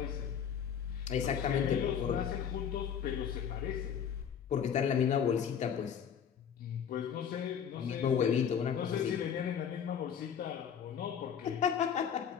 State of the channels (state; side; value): quieter; right; 8.0 dB